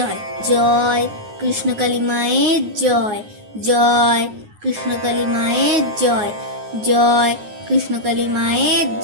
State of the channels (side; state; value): left; late; 9.5 ms